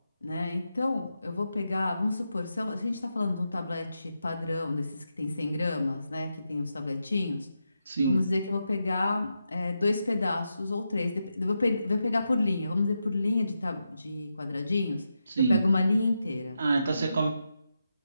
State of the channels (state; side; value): inverted; both; correlation -0.86